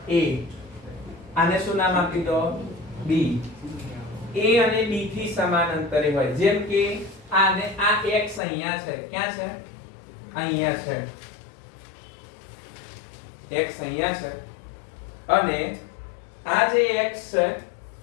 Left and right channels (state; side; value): drops out; right; at 8.4 s